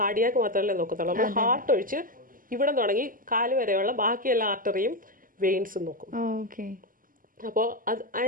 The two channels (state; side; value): late; left; 0.41 ms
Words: കാർഡിയാക്ക് മാത്രമല്ലേ നോക്കത്തുള്ളൂ. നമ്മൾ ഹാർട്ട് ഒഴിച്ച് ഇവിടെ തുടങ്ങി കാല് വരെയുള്ള ബാക്കി എല്ലാ ആർട്ടറിയും വെയിൻസും നോക്കും. അപ്പോൾ അത്